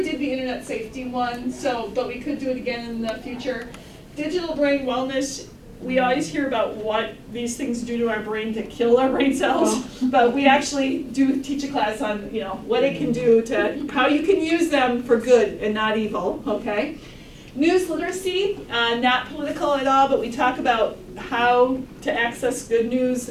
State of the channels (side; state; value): both; identical; correlation 1.00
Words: did the internet safety one, but we could do it again in the future. Digital brain wellness, we always hear about what these things do to our brain to kill our brain cells, but we actually do teach a class on, you know, what it can do to, how you can use them for good and not evil, okay? News literacy, not political at all, but we talk about how to access good news.